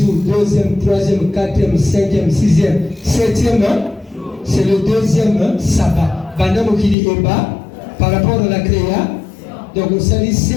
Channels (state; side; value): drops out; right; at 7.0 s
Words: deuxième, troisième, quatrième, cinquième, sixième, septième, c'est le deuxième sabbat. Bandam Okili Eba, par rapport à la créa, donc on s'allie